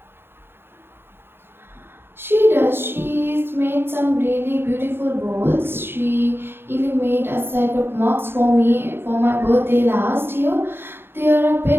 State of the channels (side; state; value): left; late; 0.11 ms